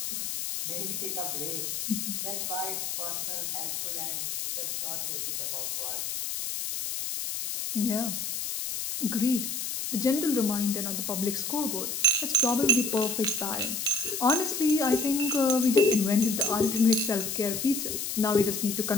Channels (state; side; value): noise; left; hiss, 3 dB below the sound